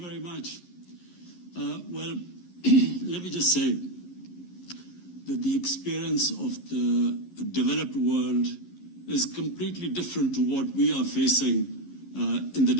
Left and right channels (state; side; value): late; right; 11 ms